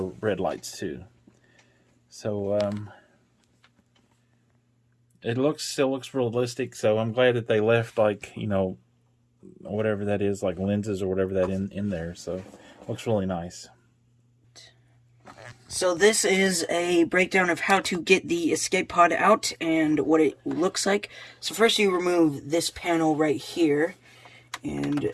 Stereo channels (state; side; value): identical; both; correlation 1.00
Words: red lights too. So it still looks realistic. So I'm glad that they left, like, you know, whatever that is, like lenses or whatever that in there. So it looks really nice. So this is a breakdown of how to get the escape pod out and what it looks like. So first you remove this panel right here, and